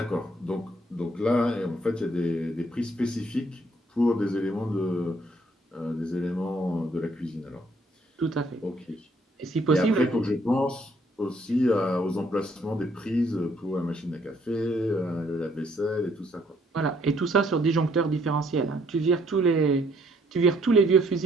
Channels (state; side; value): normal; both; correlation 0.66